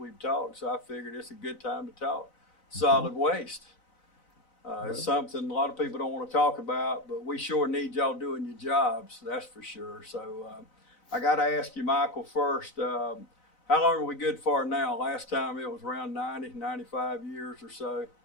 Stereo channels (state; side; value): late; right; 4.0 ms